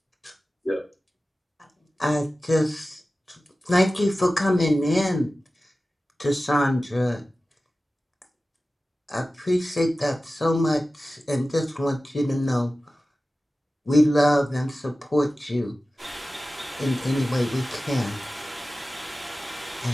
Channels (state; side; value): normal; both; correlation 0.95